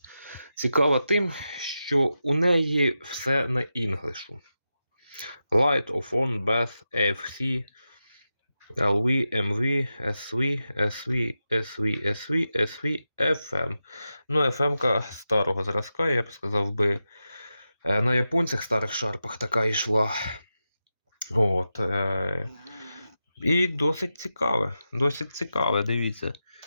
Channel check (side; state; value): both; inverted; correlation -0.90